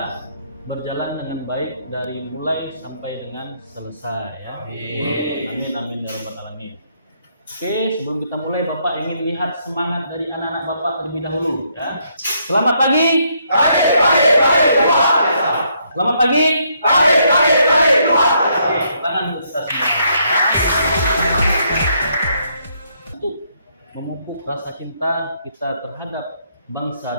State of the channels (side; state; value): both; inverted; correlation -0.73